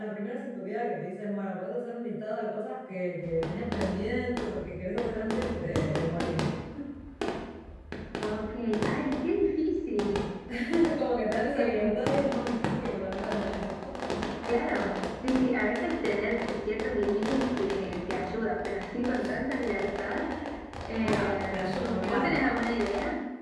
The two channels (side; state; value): both; identical; correlation 1.00